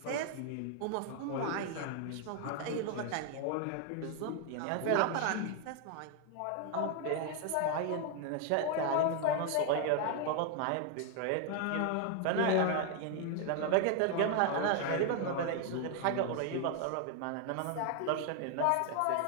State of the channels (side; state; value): both; different; correlation 0.01